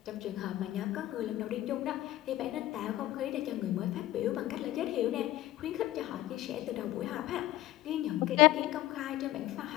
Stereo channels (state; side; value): quieter; right; 15.6 dB